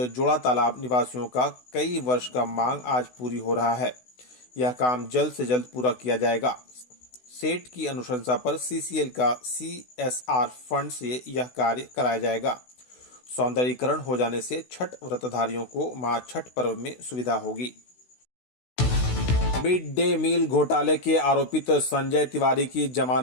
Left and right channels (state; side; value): late; right; 16 ms